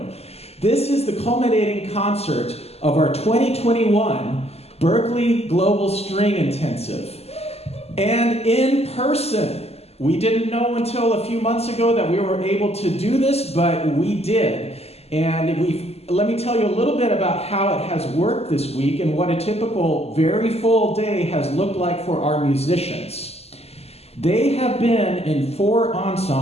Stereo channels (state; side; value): late; right; 0.30 ms